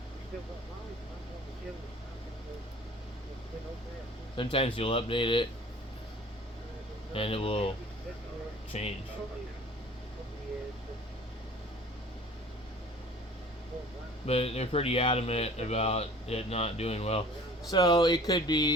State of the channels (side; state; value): both; normal; correlation 0.47